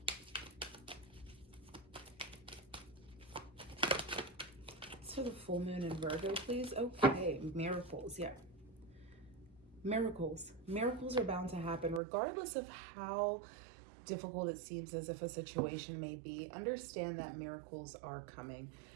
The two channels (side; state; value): left; drops out; at 12.0 s